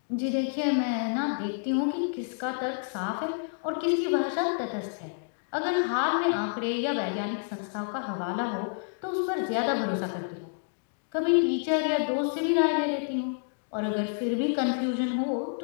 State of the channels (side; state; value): right; silent; digital silence